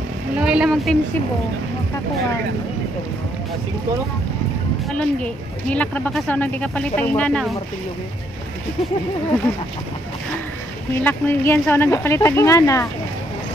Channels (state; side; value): normal; both; correlation 0.71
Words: Loy lamang Team Cebu. Makakuan. Asing ko no? Alon gi. Nilak ra ba ka sa nang di ka palit ang ingana. Nilak mo yan sa nang kapalit ang ingana.